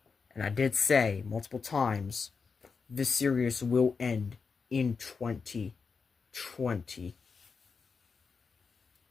And I did say multiple times, this series will end in 2025.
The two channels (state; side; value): quieter; right; 5.2 dB